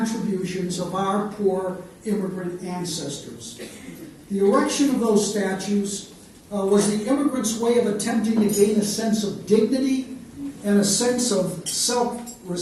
of our poor immigrant ancestors. The erection of those statues was the immigrants' way of attempting to gain a sense of dignity and a sense of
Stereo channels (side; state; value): both; identical; correlation 1.00